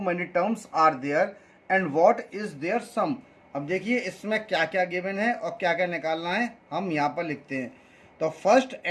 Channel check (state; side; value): identical; both; correlation 1.00